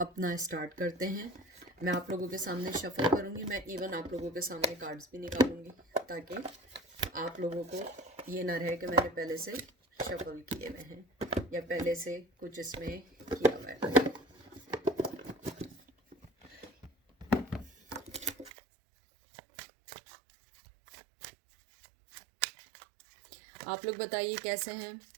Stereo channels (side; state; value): left; drops out; at 18.5 s